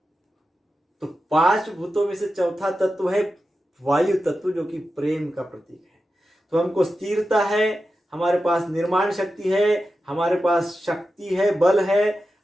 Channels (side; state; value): both; normal; correlation 0.91